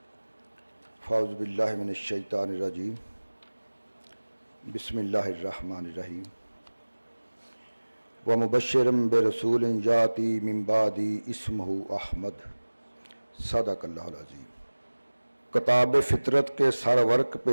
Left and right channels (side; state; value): both; inverted; correlation -1.00